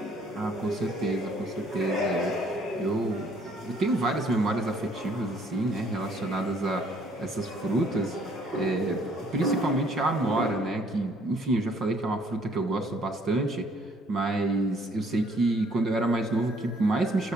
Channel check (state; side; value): normal; both; correlation 0.62